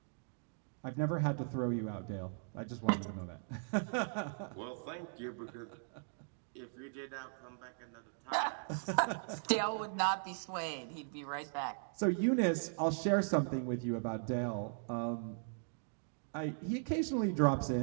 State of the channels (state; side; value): silent; left; digital silence